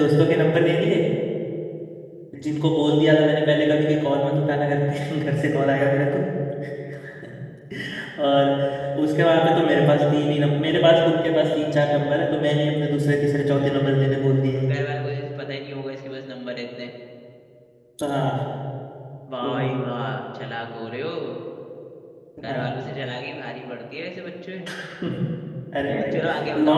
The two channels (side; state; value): both; identical; correlation 1.00